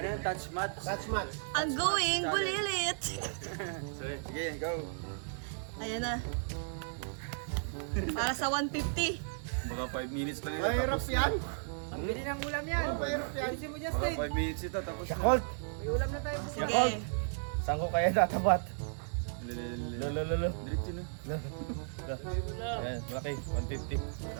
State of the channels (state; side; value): silent; left; digital silence